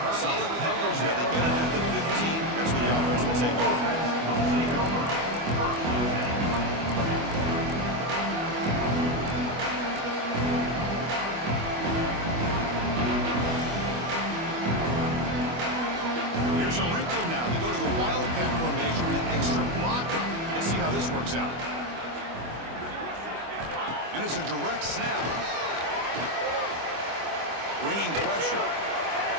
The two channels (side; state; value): left; late; 25 ms